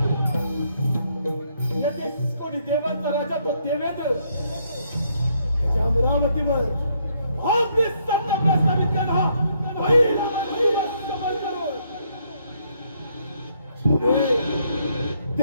या 30 कोटी देवांचा राजा तो देवेंद्र त्या अमरावतीवर आपली सत्ता प्रस्थापित केला. पहिला समर करून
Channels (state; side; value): inverted; both; correlation -0.72